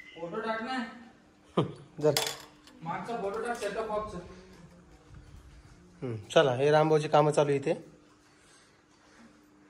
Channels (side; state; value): both; identical; correlation 1.00